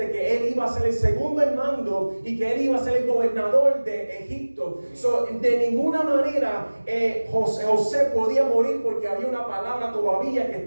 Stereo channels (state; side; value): inverted; both; correlation -1.00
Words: que él iba a ser el segundo en mando y que él iba a ser el gobernador de Egipto. De ninguna manera José podía morir, porque había una palabra todavía que